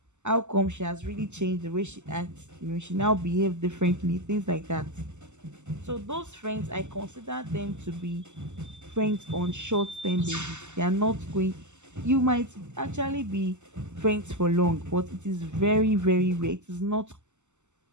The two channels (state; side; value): late; left; 0.84 ms